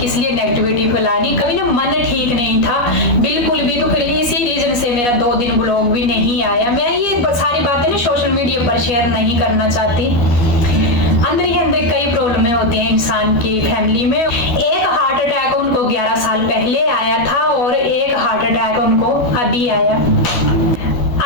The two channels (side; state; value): right; late; 12 ms